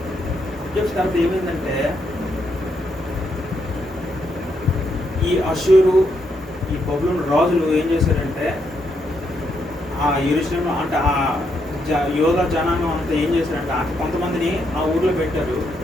అబ్జర్వ్ తర్వాత ఏమైందంటే ఈ అషూరు ఈ బబులోను రాజులు ఏం చేశారంటే ఆ యెరూషలేములో అంటే ఆ యోధా జనాంగం అంతా ఏం చేశారంటే కొంతమందిని ఆ ఊర్లో పెట్టారు,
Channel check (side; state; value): both; normal; correlation 0.78